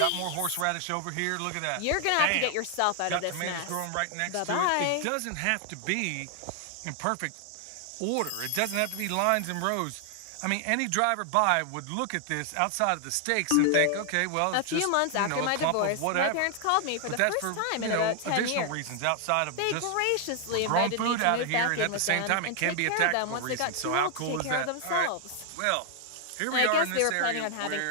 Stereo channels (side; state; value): both; different; correlation 0.00